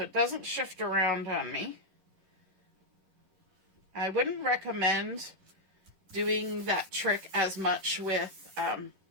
it doesn't shift around on me. I wouldn't recommend doing that trick as much with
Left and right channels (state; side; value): late; left; 11 ms